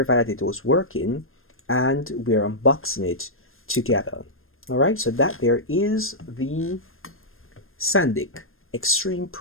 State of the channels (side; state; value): right; late; 0.60 ms